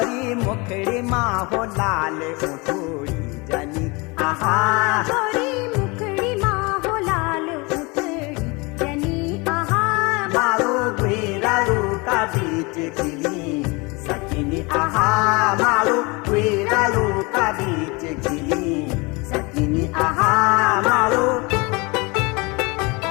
मुखड़ी माँ हो लाल उठोड़ी जनी आहा गोरी मुखड़ी माँ हो लाल उठड़ी जनी आहा मारो गुरारू का बीच खिली सकिनी आहा मारो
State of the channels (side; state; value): right; quieter; 27.0 dB